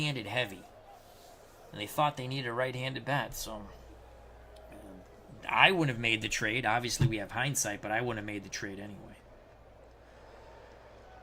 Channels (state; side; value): identical; both; correlation 1.00